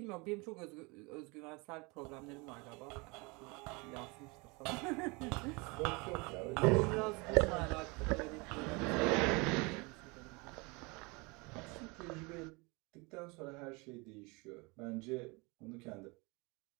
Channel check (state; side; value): quieter; left; 27.5 dB